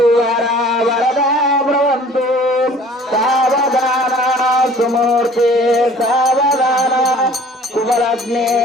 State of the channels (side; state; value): both; normal; correlation 0.50